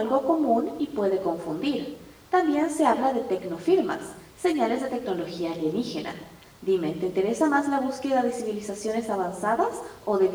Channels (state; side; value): identical; both; correlation 1.00